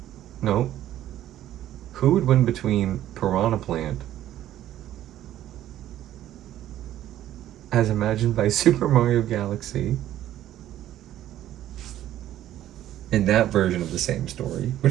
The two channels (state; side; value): quieter; left; 12.7 dB